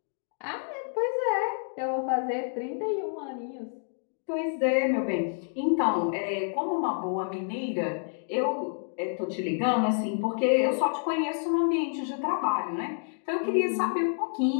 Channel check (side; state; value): right; silent; digital silence